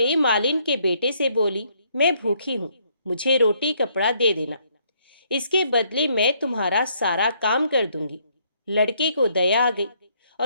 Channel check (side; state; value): both; inverted; correlation -0.69